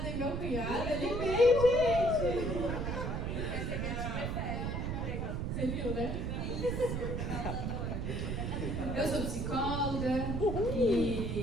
e meu cunhado, ele veio, gente! Você viu, né? Eu sou psicóloga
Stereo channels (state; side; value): noise; right; rumble, 2 dB below the sound